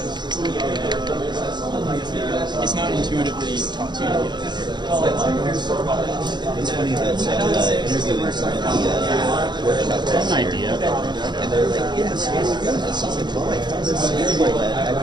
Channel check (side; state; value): left; late; 0.21 ms